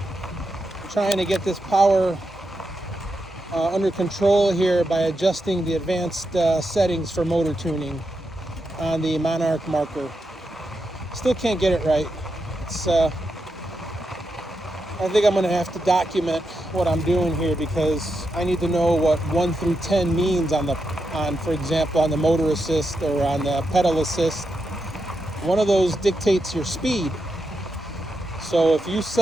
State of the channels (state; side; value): normal; both; correlation 0.86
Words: trying to get this power under control here by adjusting the advanced settings for motor tuning on the Monarc Marker. Still can't get it right. I think I'm going to have to document what I'm doing here because I need to know what 1 through 10 means for example, on the motor assist or on the pedal assist. One of those dictates your speed. So if you